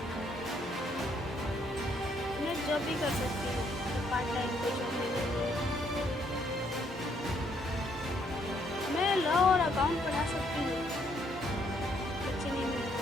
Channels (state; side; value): normal; both; correlation 0.70